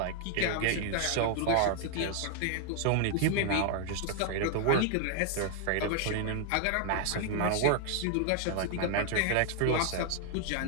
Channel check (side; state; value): both; different; correlation 0.00